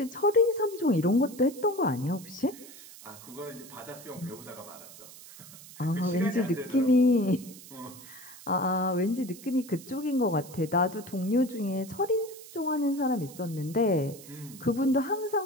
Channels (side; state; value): right; noise; hiss, 18 dB below the sound